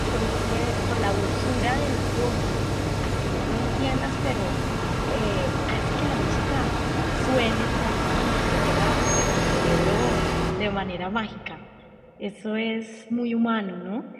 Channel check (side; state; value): both; identical; correlation 1.00